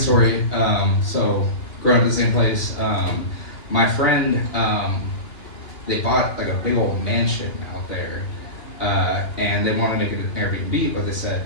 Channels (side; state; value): right; late; 2.9 ms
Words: So, growing up in the same place, my friend, they bought like a big old mansion out there. And they wanted to make it an Airbnb, but they said